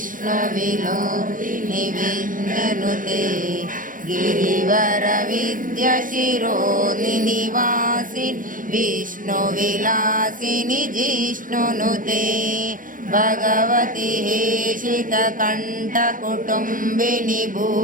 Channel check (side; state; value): left; late; 0.39 ms